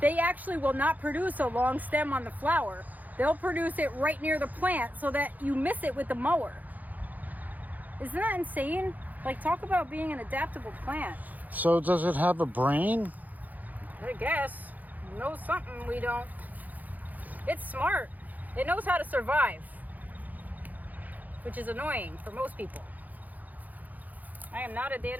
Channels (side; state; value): left; late; 0.081 ms